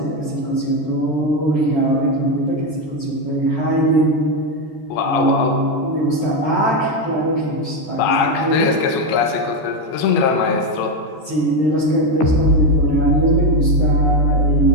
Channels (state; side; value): late; right; 13 ms